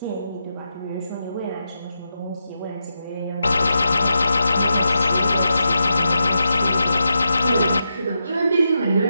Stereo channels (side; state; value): both; inverted; correlation -0.85